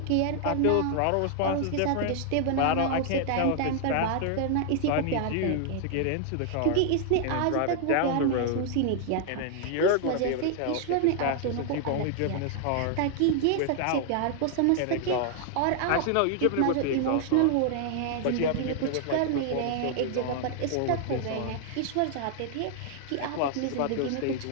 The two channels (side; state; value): both; different; correlation 0.00